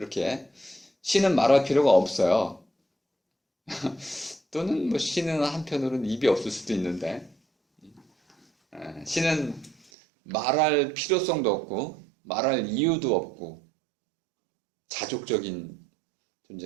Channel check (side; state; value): left; drops out; at 9.8 s